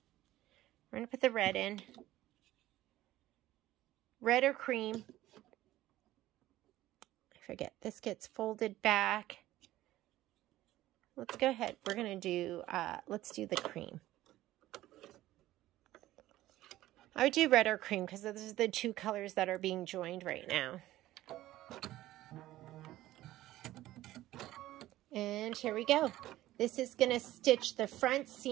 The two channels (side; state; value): left; quieter; 15.3 dB